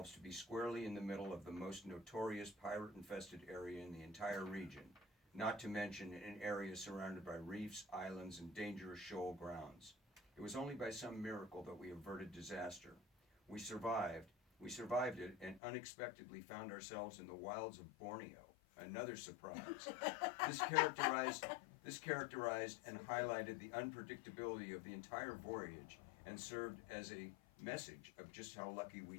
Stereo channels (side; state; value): right; drops out; at 15.6 s